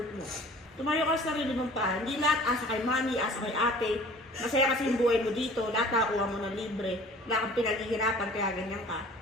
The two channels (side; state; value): both; normal; correlation 0.48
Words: mo. Tumayo ka sa sarili mong paa. Hindi lahat asa kay mami, asa kay ate. Masaya kasi yung buhay mo dito. Lahat nakakuha mo ng libre. Wala kang pinaghihirapan kaya ganyan ka.